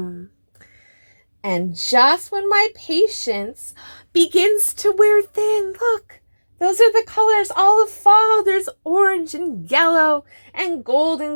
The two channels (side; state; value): both; inverted; correlation -1.00